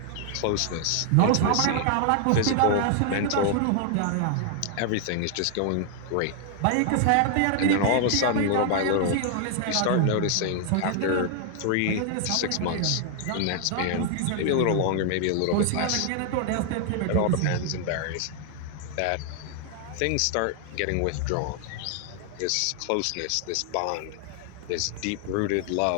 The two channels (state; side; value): different; both; correlation 0.00